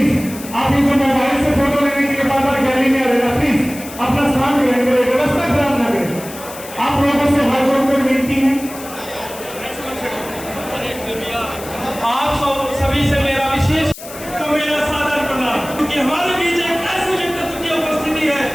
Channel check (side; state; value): left; noise; hiss, 14 dB below the sound